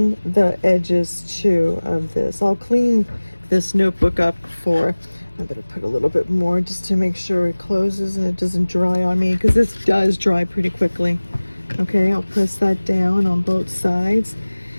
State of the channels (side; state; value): both; inverted; correlation -1.00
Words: the edges too of this. I'll clean this notebook up before. I better put a little bit more just to make sure it closes and it doesn't dry on me, because this does dry pretty quickly. Okay, I'll press that down on both sides,